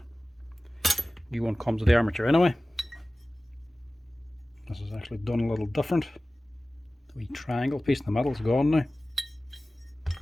new one comes with the armature anyway. This is actually done a little different. The wee triangle piece in the middle is gone now.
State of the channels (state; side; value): normal; both; correlation 0.97